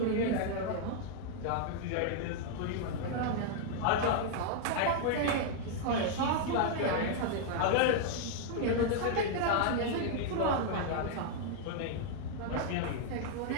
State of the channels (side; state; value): both; different; correlation 0.00